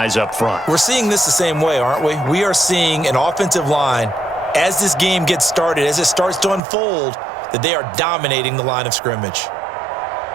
up front. We're seeing this the same way, aren't we? We are seeing an offensive line, as this game gets started, as it starts to unfold, that they are dominating the line of scrimmage.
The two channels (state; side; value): drops out; left; at 6.6 s